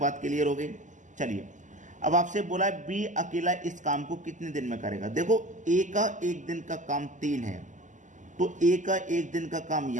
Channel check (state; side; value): late; left; 0.36 ms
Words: क्लियर हो गई। चलिए अब आपसे बोला है बी अकेला इस काम को कितने दिन में करेगा। देखो ए का एक दिन का काम 3 है, तो ए का एक दिन का काम